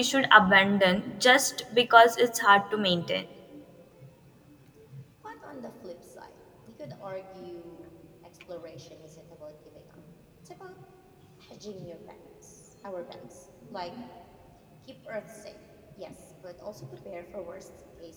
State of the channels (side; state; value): both; identical; correlation 1.00